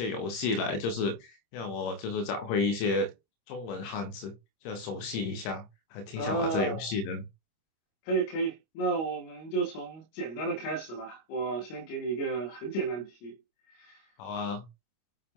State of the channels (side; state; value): right; late; 26 ms